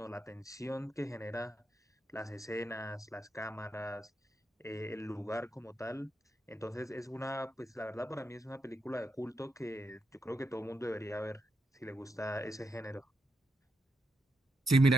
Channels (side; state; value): both; normal; correlation 0.84